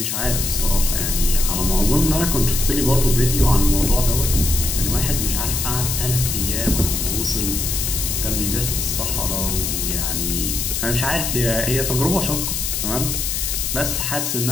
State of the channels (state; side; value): noise; left; hiss, 1 dB below the sound